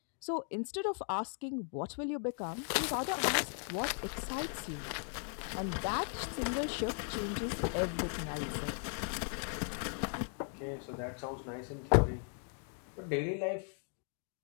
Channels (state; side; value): silent; right; 53 dB below the other